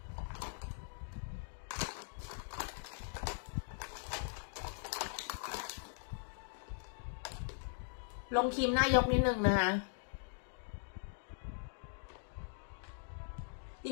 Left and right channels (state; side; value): silent; right; digital silence